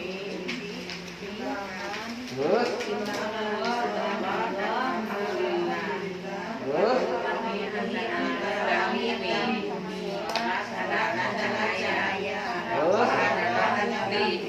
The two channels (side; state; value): both; identical; correlation 1.00